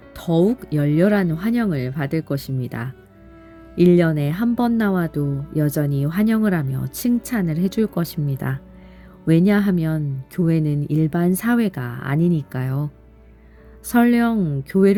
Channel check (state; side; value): identical; both; correlation 1.00